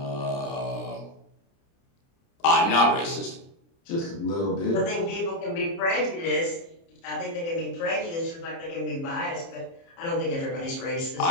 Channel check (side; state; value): right; late; 30 ms